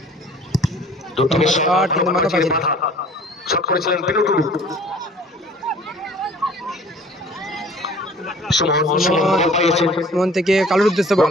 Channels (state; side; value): normal; both; correlation 0.50